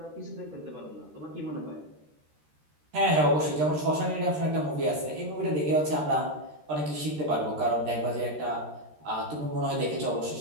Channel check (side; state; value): left; late; 13 ms